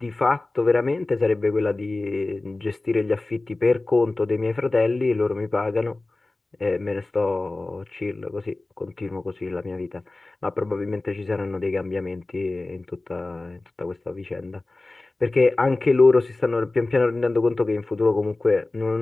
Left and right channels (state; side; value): quieter; right; 3.1 dB